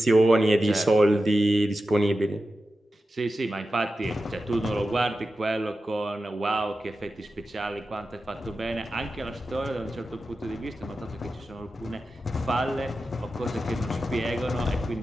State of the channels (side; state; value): both; normal; correlation 0.92